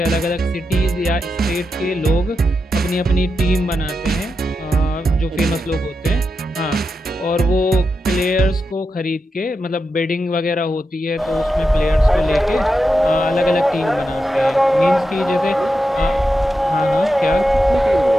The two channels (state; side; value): normal; both; correlation 0.88